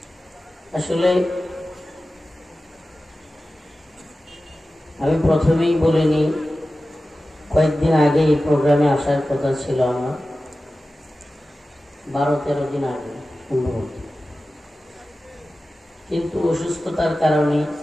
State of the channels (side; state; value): both; normal; correlation 0.95